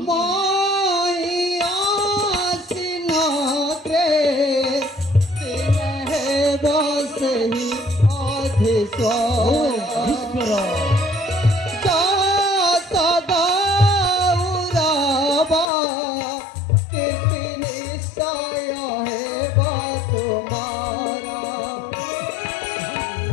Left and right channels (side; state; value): right; drops out; at 15.7 s